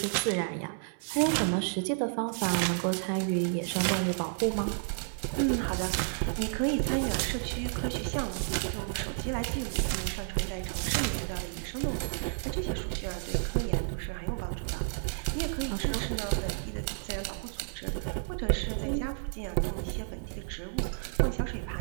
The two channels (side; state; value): left; silent; digital silence